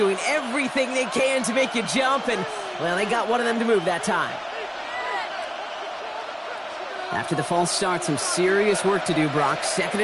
everything they can to make you jump, and, well, they got one of them to move that time. After the false start, some serious work to do, Brock. 2nd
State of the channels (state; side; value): identical; both; correlation 1.00